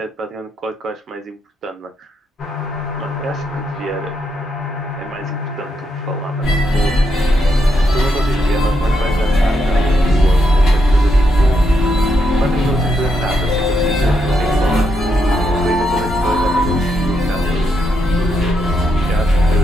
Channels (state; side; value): normal; both; correlation 0.80